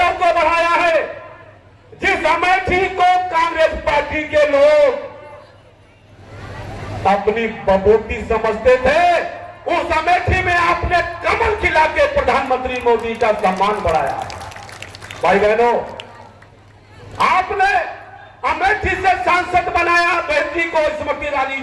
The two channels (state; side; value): identical; both; correlation 1.00